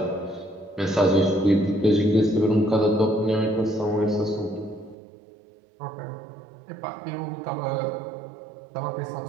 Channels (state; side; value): drops out; left; at 5.0 s